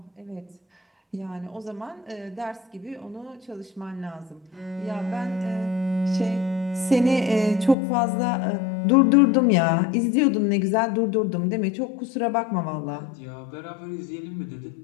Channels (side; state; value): right; drops out; at 7.8 s